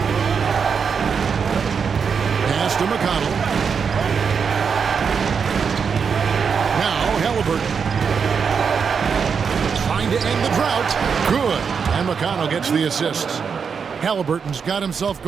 Pass to McConnell. Now Haliburton. Trying to end the drought. Good. And McConnell gets the assists. Haliburton's got himself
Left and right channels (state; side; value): quieter; left; 6.2 dB